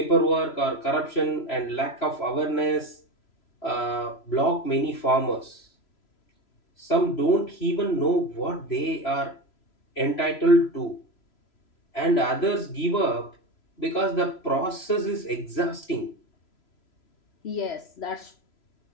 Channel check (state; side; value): late; right; 3.0 ms